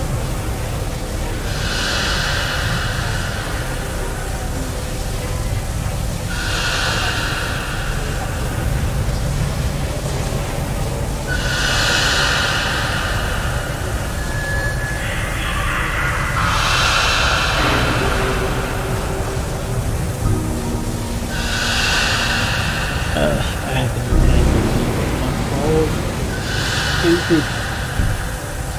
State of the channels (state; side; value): identical; both; correlation 1.00